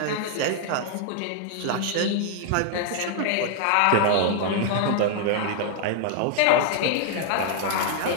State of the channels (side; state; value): both; different; correlation 0.00